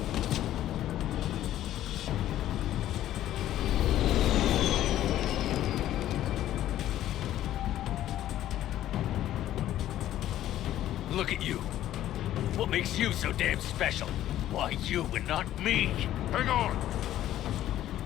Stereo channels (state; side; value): quieter; right; 12.9 dB